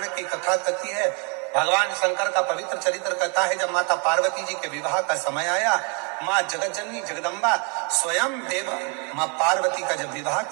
की कथा कहती है, भगवान शंकर का पवित्र चरित्र कहता है, जब माता पार्वती जी के विवाह का समय आया, माँ जगतजननी जगदम्बा स्वयं देव माँ पार्वती का जब विवाह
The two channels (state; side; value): quieter; left; 36.1 dB